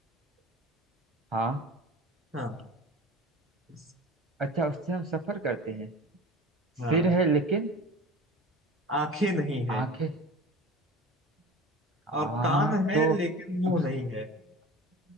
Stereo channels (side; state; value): both; normal; correlation 0.37